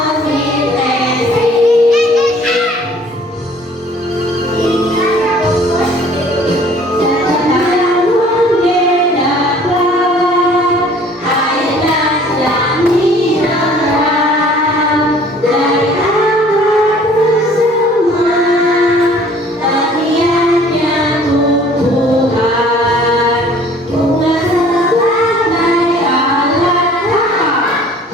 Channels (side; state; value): both; normal; correlation 0.53